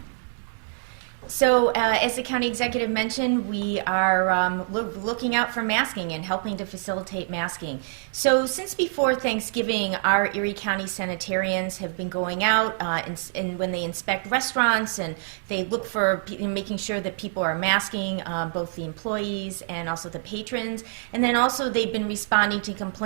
So, as the County Executive mentioned, we are looking out for masking and helping to facilitate masking. So, since before Thanksgiving, our Erie County sanitarians have been going out and when they inspect restaurants, and they look for making sure that people are masking, both the employees and also the patrons. And then also they've been responding to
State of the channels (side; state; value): left; silent; digital silence